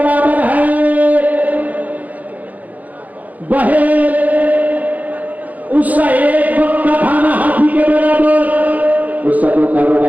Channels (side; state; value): left; late; 0.078 ms